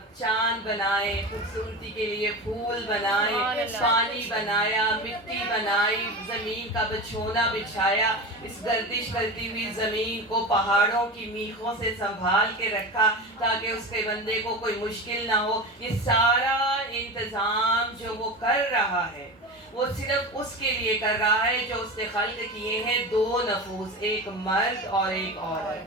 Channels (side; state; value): both; normal; correlation 0.26